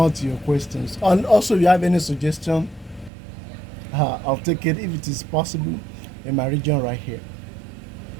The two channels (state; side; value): drops out; left; at 3.1 s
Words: to your questions. And also, if you have any suggestion, I'll take it if it is possible in my region right here.